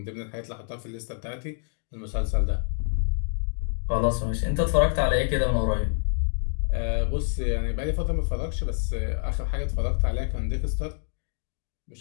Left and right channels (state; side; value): silent; right; 60 dB below the other